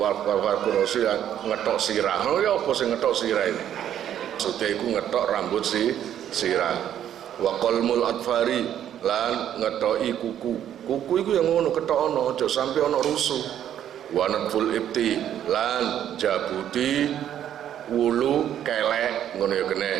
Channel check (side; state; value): left; quieter; 10.4 dB